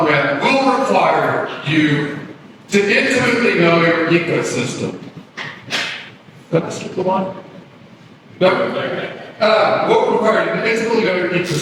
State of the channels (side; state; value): both; identical; correlation 1.00